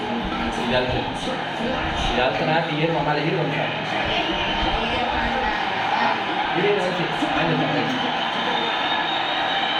இதால்த்தனா ஏறு மாமா ஏறு வந்து ஏறு வஞ்சி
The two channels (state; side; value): identical; both; correlation 1.00